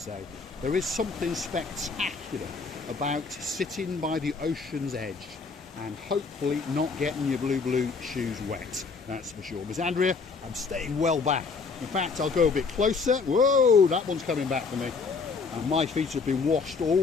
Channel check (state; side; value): quieter; right; 4.7 dB